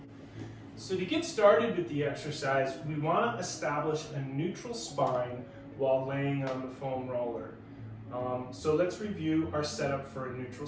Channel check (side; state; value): both; identical; correlation 1.00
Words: So to get started with the exercise, we want to establish a neutral spine while laying on the foam roller. So let's review our setup for a neutral